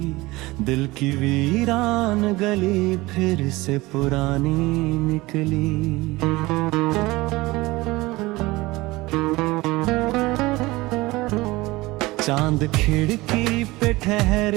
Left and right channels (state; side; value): quieter; left; 20.7 dB